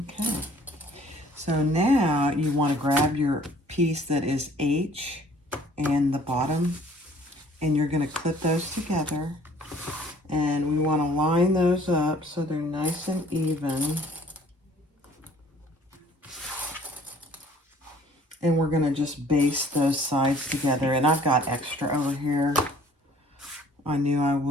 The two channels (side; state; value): both; normal; correlation 0.54